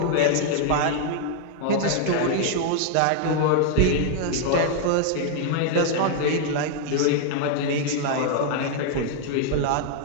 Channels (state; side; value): different; both; correlation 0.00